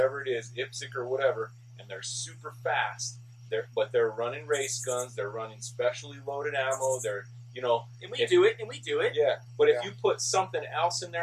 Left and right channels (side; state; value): both; identical; correlation 1.00